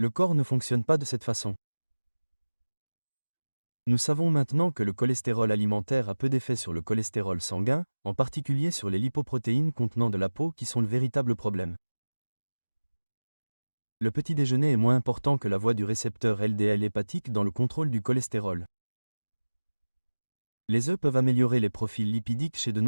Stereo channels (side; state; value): both; inverted; correlation -1.00